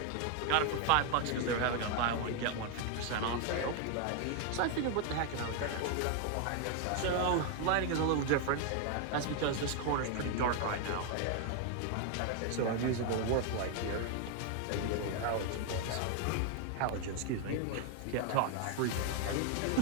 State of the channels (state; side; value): different; both; correlation 0.01